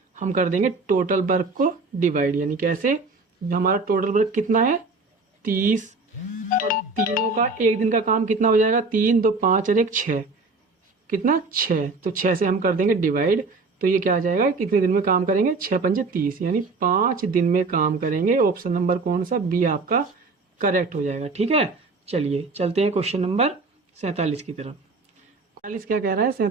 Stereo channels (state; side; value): quieter; left; 3.8 dB